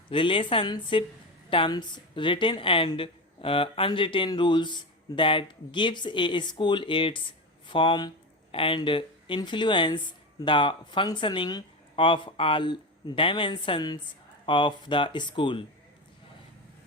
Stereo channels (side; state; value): both; normal; correlation 0.20